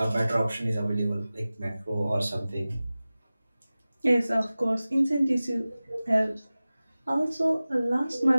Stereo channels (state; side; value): inverted; both; correlation -0.97